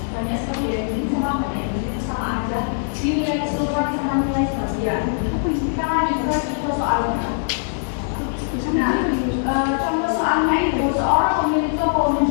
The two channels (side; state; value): right; silent; digital silence